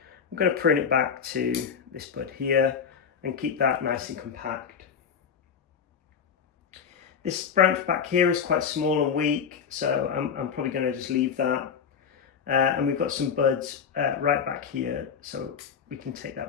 I'm going to prune it back to this bud here and keep that nice and compact. This branch back here is quite small and weak, so I'm probably going to just leave that. And we've got some buds right back here, so we can take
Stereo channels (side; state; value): right; quieter; 7.0 dB